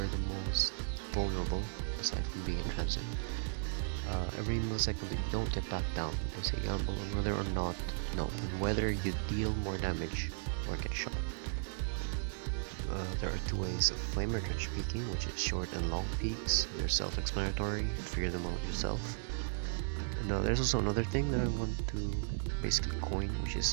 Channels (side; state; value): left; silent; digital silence